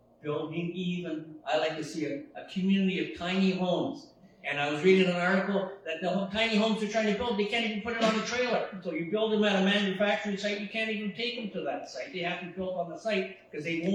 Building even, I like to see a community of tiny homes. And I was reading an article that the tiny homes they're trying to build, they can't even put it on a trailer. So you build them at a manufacturing site, you can't even take them to that site. They have to be built on the site because they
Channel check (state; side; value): identical; both; correlation 1.00